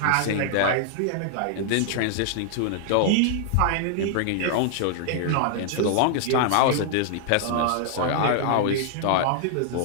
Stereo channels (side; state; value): both; different; correlation -0.01